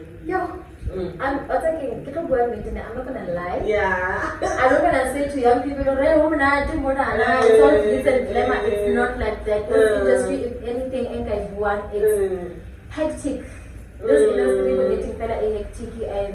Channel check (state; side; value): identical; both; correlation 1.00